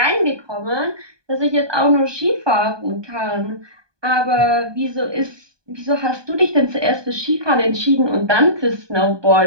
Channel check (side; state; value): left; late; 1.2 ms